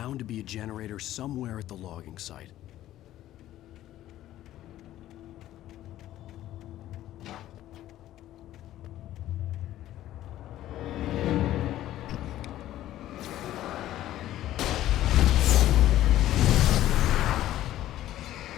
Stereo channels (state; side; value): quieter; right; 13.6 dB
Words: to be a generator somewhere at the logging site.